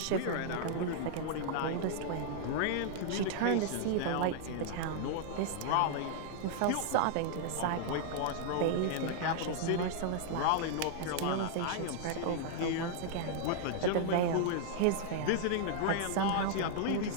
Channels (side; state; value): both; different; correlation -0.01